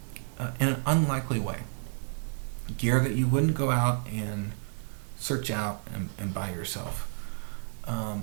in an unlikely way, gear that you wouldn't go out and search out and buy yourself,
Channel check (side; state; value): left; silent; digital silence